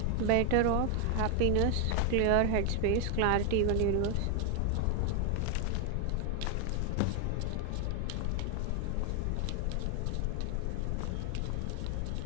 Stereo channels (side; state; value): both; different; correlation 0.00